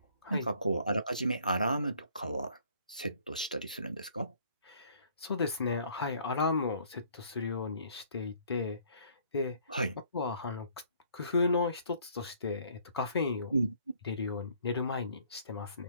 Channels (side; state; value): both; inverted; correlation -0.60